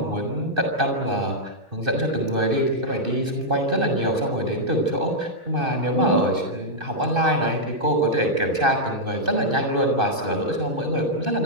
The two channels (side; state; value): left; late; 2.6 ms